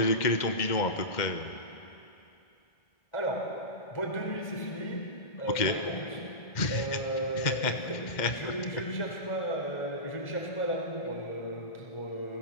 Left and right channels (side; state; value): right; late; 2.1 ms